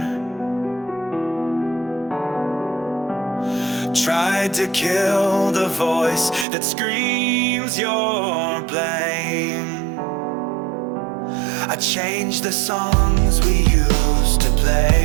tried to kill the voice that screams your blame. I changed the songs we used to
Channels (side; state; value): left; drops out; at 6.5 s